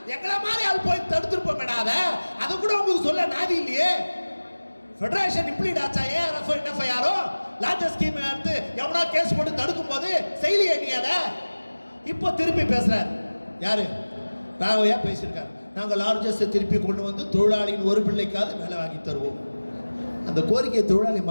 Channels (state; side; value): inverted; both; correlation -1.00